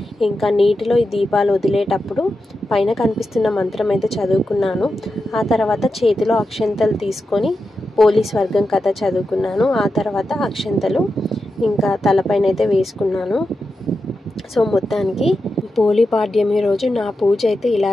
ఇంకా నీటిలో ఈ దీపాలు వదిలేటప్పుడు పైన కనిపిస్తున్న మంత్రం అయితే చదువుకున్నాను. ఆ తర్వాత చేతిలో అక్షంతలు తీసుకొని పోలీస్ వర్గం కథ చదువుకున్నాను. ఆ తర్వాత అక్షంతలు ఇంకా తలపైన అయితే వేసుకున్నాను. సో మొత్తానికి పోలీ పాడ్యమి రోజు నా పూజ అయితే ఇలా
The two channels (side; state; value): both; normal; correlation 0.89